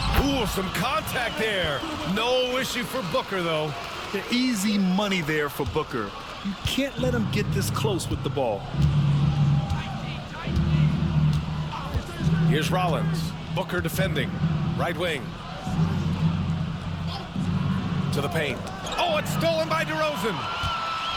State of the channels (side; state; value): both; identical; correlation 1.00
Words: Ooh, some contact there. No issue for Booker, though. The easy money there for Booker. You can't let him get this close with the ball. Here's Rollins. Booker defending. Right wing. To the paint. Oh, it's stolen by DeRozan.